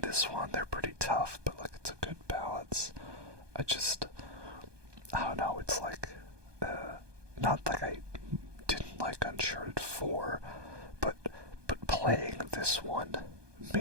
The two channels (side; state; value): left; late; 1.2 ms